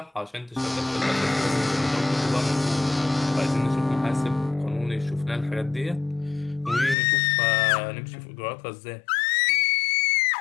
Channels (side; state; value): right; drops out; at 7.0 s